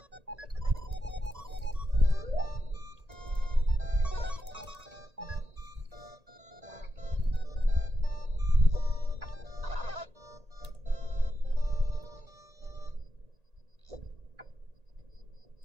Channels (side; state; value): left; late; 1.8 ms